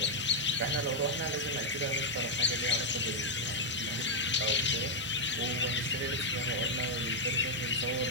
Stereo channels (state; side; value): normal; both; correlation -0.01